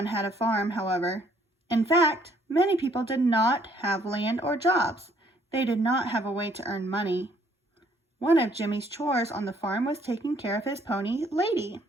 had a farm, however. In fact, many people did not have land or jobs. They did not have a way to earn money. One of Jimmy's chores on the farm was taking care of his pony, Lady.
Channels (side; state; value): both; normal; correlation 0.64